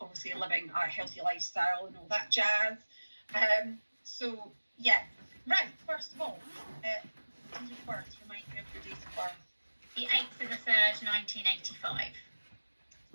obviously living a healthy lifestyle and all that jazz. So yeah, right, first of all, date of birth, remind me of your date of birth. The 8th of the 3rd, 1985.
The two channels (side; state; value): both; inverted; correlation -1.00